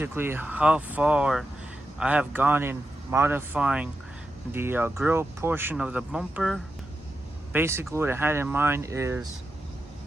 how far I have gone in modifying the grill portion of the bumper. Basically what I had in mind is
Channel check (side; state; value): both; normal; correlation 0.88